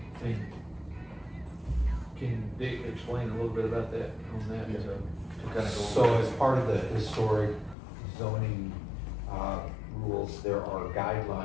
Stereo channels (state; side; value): drops out; right; at 7.8 s